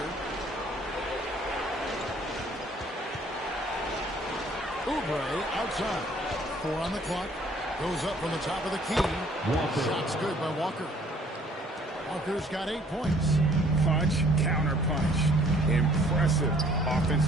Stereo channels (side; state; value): both; normal; correlation 0.59